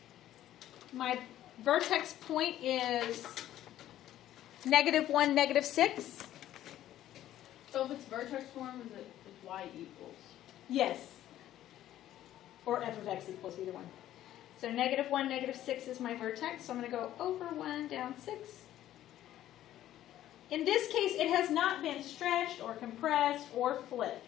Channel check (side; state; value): right; quieter; 12.8 dB